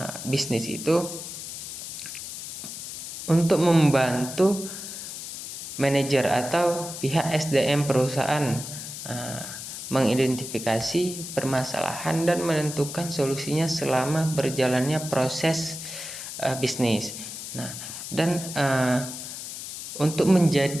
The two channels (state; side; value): noise; left; hiss, 9 dB below the sound